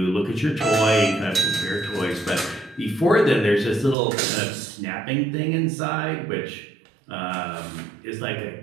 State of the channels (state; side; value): drops out; left; at 4.0 s